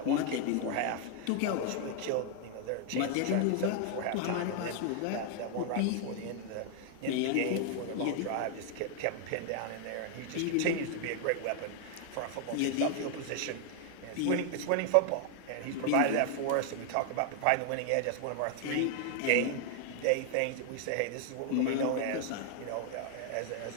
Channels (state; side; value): different; both; correlation 0.00